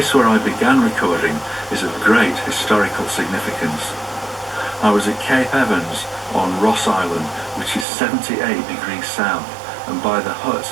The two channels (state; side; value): drops out; left; at 7.9 s